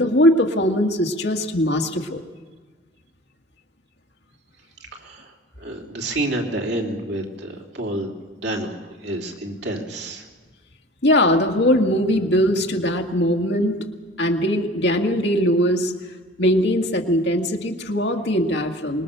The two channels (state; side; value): normal; both; correlation 0.42